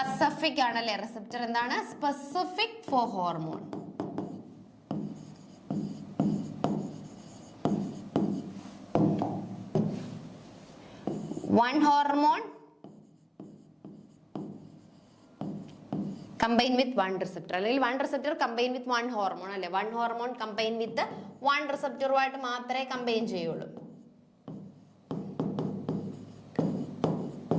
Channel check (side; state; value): both; identical; correlation 1.00